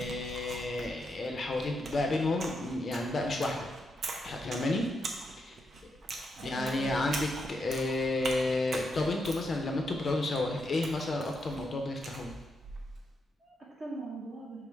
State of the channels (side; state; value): both; normal; correlation 0.82